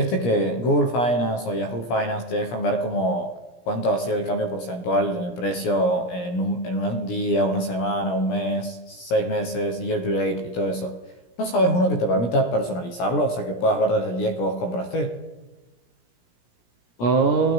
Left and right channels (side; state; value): right; late; 17 ms